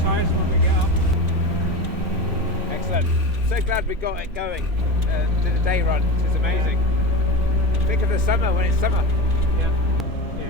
tyres when we get up. Excellent. So glad we got it going. Did a day run. It's amazing. Think of the summer when it's summer. Yeah.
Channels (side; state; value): both; normal; correlation 0.25